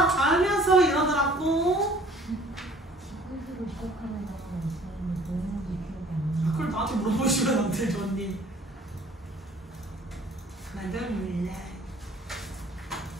알면서 이러더라고. 그걸 나한테 물어보시면 안 되죠, 언니. 나도 몰라.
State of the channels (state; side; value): normal; both; correlation 0.54